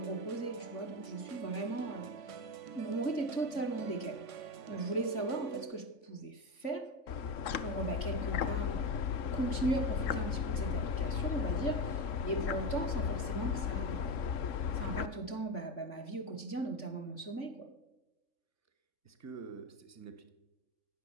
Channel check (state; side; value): late; right; 3.5 ms